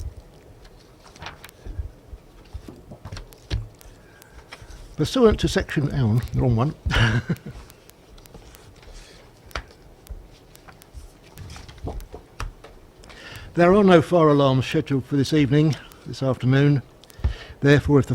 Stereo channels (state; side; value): identical; both; correlation 1.00